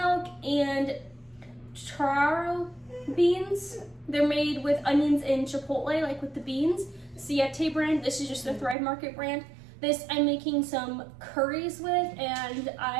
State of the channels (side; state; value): left; drops out; at 8.8 s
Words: and taro beans. They're made with onions and chipotle, like with the beans. Siete brand. This is just the Thrive Market brand. This I'm making some curries with, and